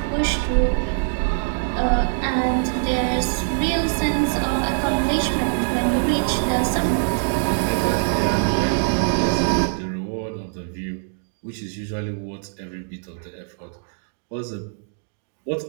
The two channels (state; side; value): silent; left; digital silence